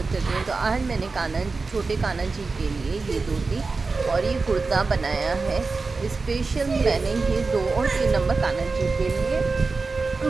करती हूँ। तो आज मैंने छोटे कान्हा जी के लिए ये धोती और ये कुर्ता बनाया है। स्पेशल मैंने ये 2 और 3 नंबर कान्हा जी के लिए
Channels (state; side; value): quieter; left; 4.1 dB